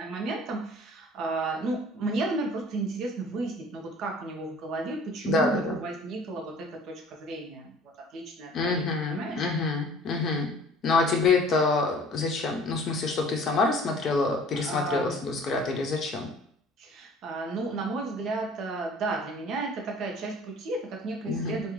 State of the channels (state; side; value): normal; both; correlation 0.49